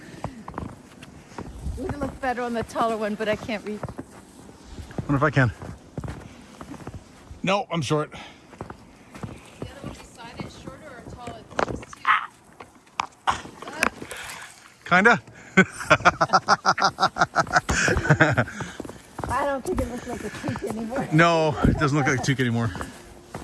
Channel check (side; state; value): both; identical; correlation 1.00